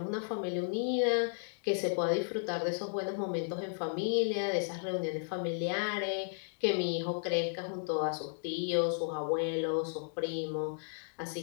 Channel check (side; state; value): right; silent; digital silence